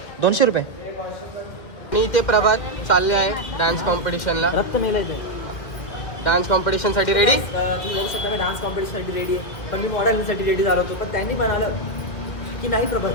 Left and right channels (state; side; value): late; right; 1.9 ms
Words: 200 रुपये. मी इथे प्रभात चालले आहे डान्स कॉम्पिटिशनला. रक्त मेलायचं. Dance कॉम्पिटिशनसाठी ready. तुम्ही बघू शकता मी डान्स कॉम्पिटिशनसाठी रेडी आहे. पण मी मॉडेलसाठी रेडी झालो होतो. पण त्यांनी म्हणालं की नाही Prabhat,